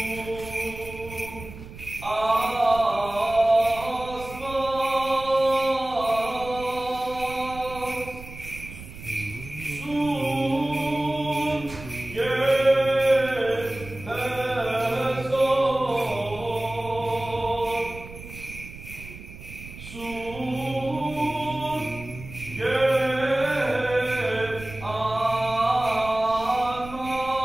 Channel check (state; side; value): noise; right; rumble, 14 dB below the sound